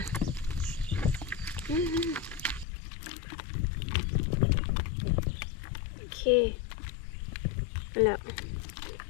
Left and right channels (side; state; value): right; drops out; at 2.7 s